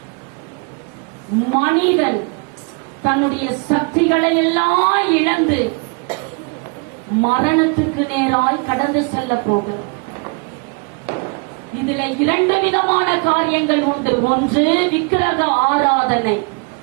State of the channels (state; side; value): quieter; left; 33.8 dB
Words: மனிதன் தன்னுடைய சக்திகளை எல்லாம் இழந்து மரணத்துக்கு நேராய் கடந்து செல்ல போகிறது. இதுல இரண்டு விதமான காரியங்கள் உண்டு. ஒன்று விக்கிரக ஆராதனை,